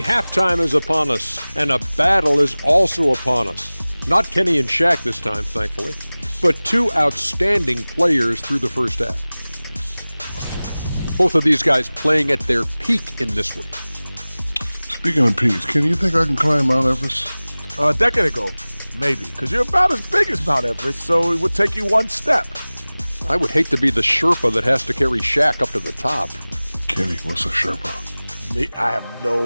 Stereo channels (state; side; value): inverted; both; correlation -0.99